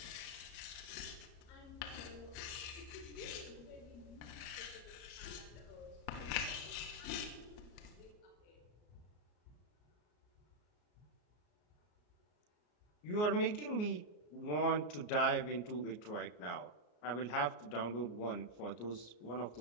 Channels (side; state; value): right; late; 33 ms